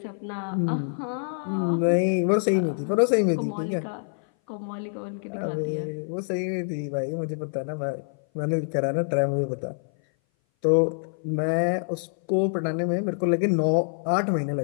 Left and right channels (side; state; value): right; silent; 58 dB below the other